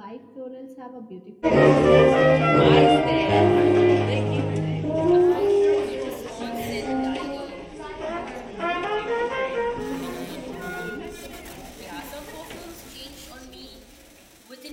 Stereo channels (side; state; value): both; identical; correlation 1.00